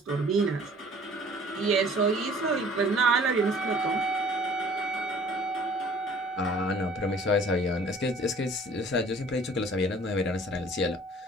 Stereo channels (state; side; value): normal; both; correlation 0.52